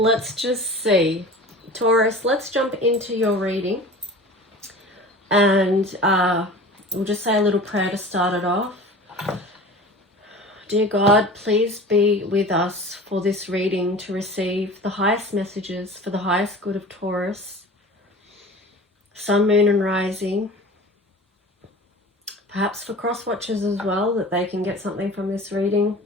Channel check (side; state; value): both; normal; correlation 0.38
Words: just see. Taurus, let's jump into your reading, and we'll just say a little prayer to start it off. Dear God, please be with us for this reading to receive the highest messages for the highest good of Taurus, Sun, Moon and Rising, perhaps for cross watchers as well, that they can get something from this reading.